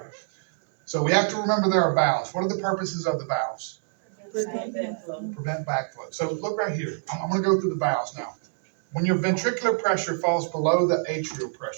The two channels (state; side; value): silent; left; 61 dB below the other